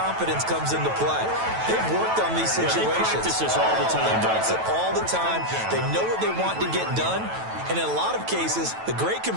comes into play. They've worked on these situations. Yeah, they practice this all the time. They practice it all the time. They know what they want to get done. And in a lot of cases, the great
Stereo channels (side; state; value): left; late; 9.1 ms